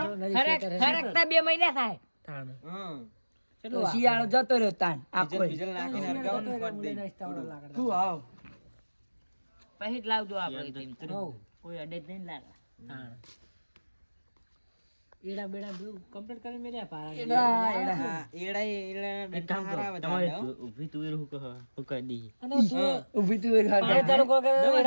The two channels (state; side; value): inverted; both; correlation -1.00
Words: ખરેખતા 2 મહિના થાય થાણ હા તો શિયાળો જતો રહ્યો તાન આખો ડીઝલ નાખીને હરગાવાનું કરી દે શું આવ પછી જ લાવજો આપણે તેમ. હોવ કોઈ અડે જ નહીં લાગે થાણ એડા બેડા બધું કમ્પ્લીટ કરી મેલ્યા પારા હા એડા ઊભી તુવેર હું કહી દી અને તું ઊભી તુવેર પાણી ચાલુ કરો કે